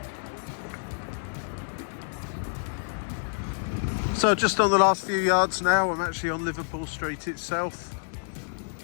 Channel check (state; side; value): silent; right; 57 dB below the other